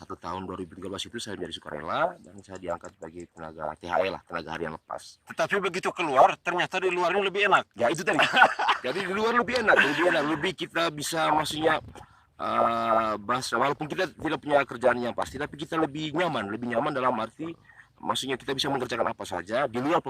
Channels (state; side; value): identical; both; correlation 1.00